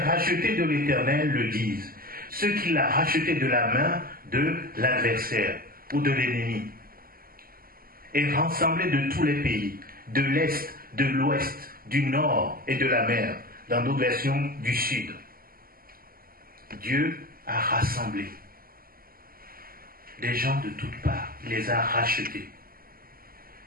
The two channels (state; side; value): late; left; 0.42 ms